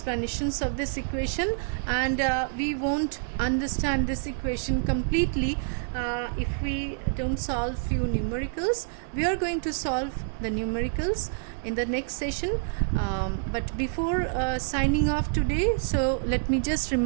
of this equation, and we won't understand this equation completely if we don't solve few numericals. We are going to solve the numericals in the next session, but before signing off today, so let me just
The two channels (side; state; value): left; silent; 60 dB below the other